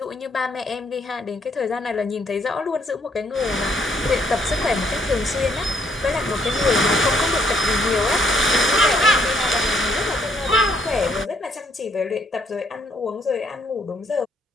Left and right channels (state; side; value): normal; both; correlation 0.68